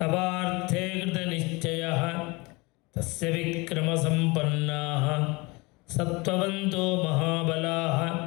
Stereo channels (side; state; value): right; quieter; 25.6 dB